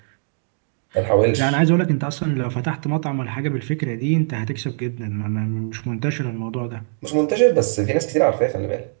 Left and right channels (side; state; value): left; silent; 59 dB below the other